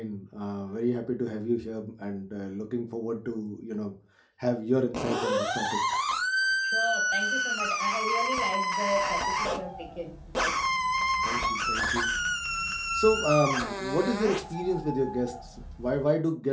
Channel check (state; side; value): identical; both; correlation 1.00